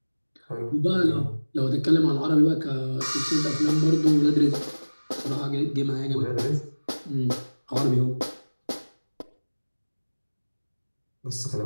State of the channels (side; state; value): both; inverted; correlation -1.00